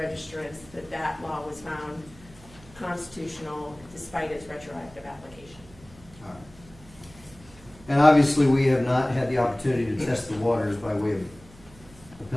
that law was found constitutional despite its retroactive application. All right. And obviously, we have not had the opportunity to test the waters by way of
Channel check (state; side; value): noise; right; hum, 23 dB below the sound